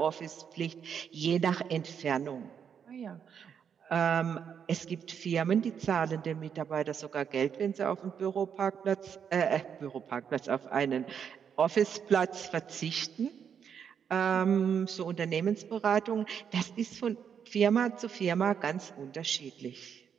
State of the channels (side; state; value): left; quieter; 7.6 dB